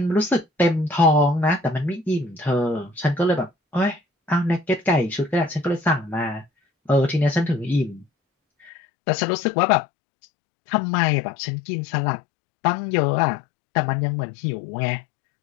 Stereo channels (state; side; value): drops out; right; at 8.7 s